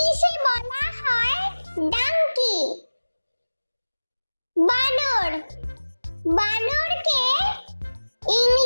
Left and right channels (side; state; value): both; inverted; correlation -1.00